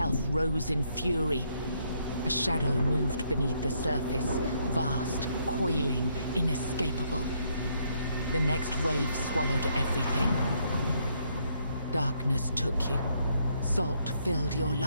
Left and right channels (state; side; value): inverted; both; correlation -0.72